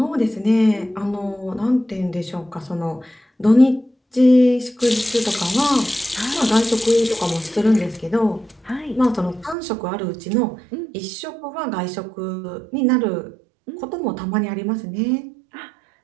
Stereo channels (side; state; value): left; drops out; at 9.6 s